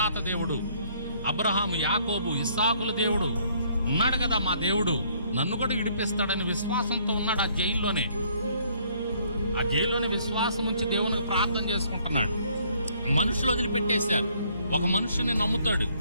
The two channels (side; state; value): both; inverted; correlation -0.64